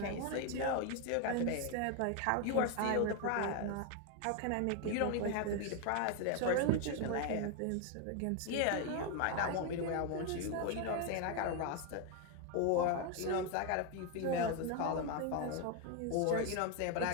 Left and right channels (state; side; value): different; both; correlation 0.01